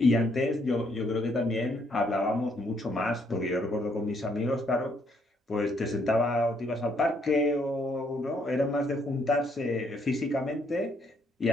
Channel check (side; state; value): both; normal; correlation 0.71